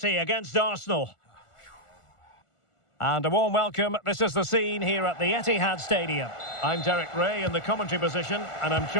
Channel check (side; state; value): right; late; 1.4 ms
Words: against Arsenal. And a warm welcome. This is the scene here at the Etihad Stadium. I'm Derek Ray in the commentary position, and I'm